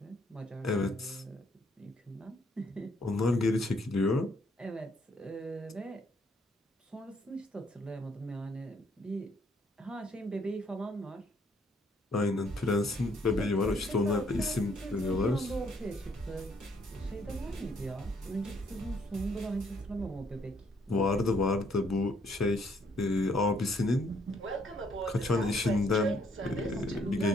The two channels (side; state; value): both; normal; correlation 0.68